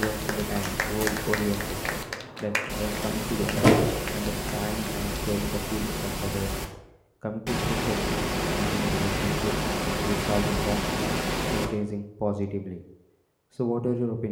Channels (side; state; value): both; identical; correlation 1.00